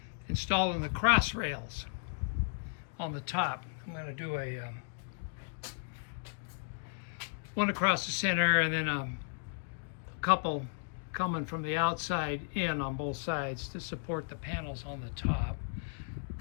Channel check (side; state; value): right; silent; digital silence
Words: installing the cross rails on the top. I'm going to do a one across the center and then a couple coming from the outside in on both sides to support the panels on the top.